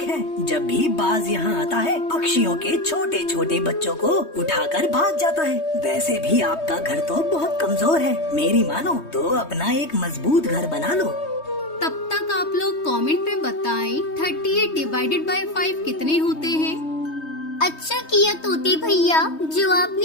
है। जब भी बाज यहाँ आता है पक्षियों के छोटे छोटे बच्चों को उठाकर भाग जाता है। वैसे भी आपका घर तो बहुत कमजोर है, मेरी मानो तो अपना एक मजबूत घर बना लो। तब तक आप लोग कमेंट में बताएं 38 डिवाइडेड बाय 5 कितने होते हैं। अच्छा किया तोते भैया जो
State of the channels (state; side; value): late; right; 3.2 ms